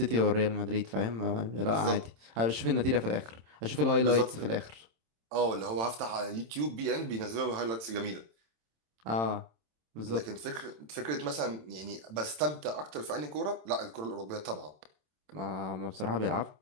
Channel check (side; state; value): left; late; 27 ms